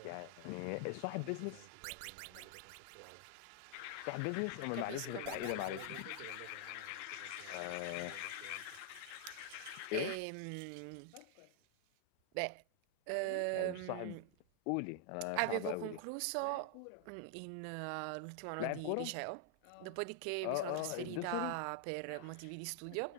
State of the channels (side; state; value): both; different; correlation 0.00